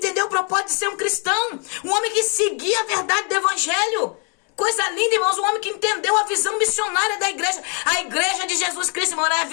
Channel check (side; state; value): right; quieter; 37.7 dB